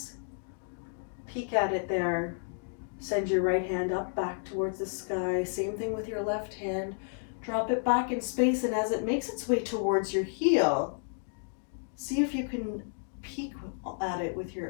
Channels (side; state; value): right; silent; digital silence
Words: Peek at it there. Send your right hand up back towards the sky. Same thing with your left hand. Drop it back in space, and as it makes its way towards your heel, see if you can peek at it with